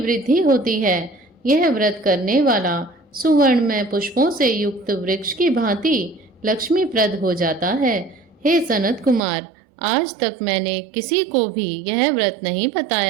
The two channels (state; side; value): drops out; left; at 9.2 s